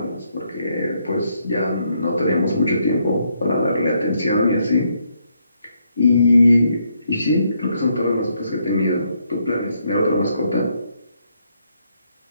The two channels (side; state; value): both; inverted; correlation -0.75